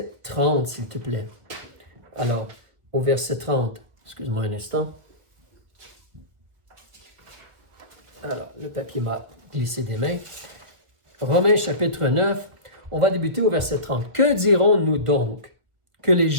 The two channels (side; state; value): left; late; 1.4 ms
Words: 30, s'il te plaît. Alors, au verset 30, excuse-moi un instant. Alors, le papier m'a glissé des mains. Romains chapitre 9, on va débuter au verset 30. Que dirons-nous donc? Que les